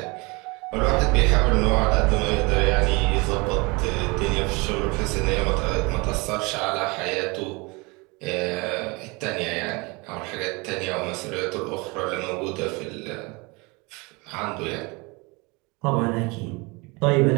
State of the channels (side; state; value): left; quieter; 26.9 dB